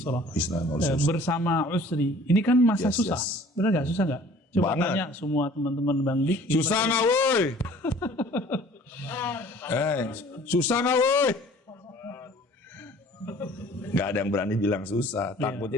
Bersama usri. Ini kan masa susah. Benar nggak? Susah nggak? Coba tanya semua teman-teman Bang Dik. Susah nggak woi? Susah nggak woi? Nggak ada yang berani bilang susah. Takutnya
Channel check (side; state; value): both; normal; correlation 0.51